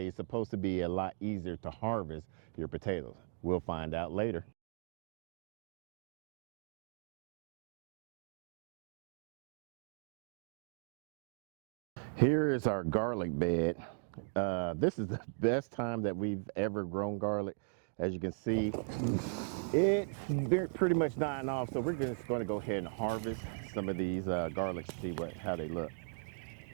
is supposed to be a lot easier to harvest your potatoes. We'll find out later. Here is our garlic bed. This is the best time that we've ever grown garlic. As you can see, it's pretty much dying off. So we're just going to go ahead and harvest some of these garlics to see how they look.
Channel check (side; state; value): left; silent; digital silence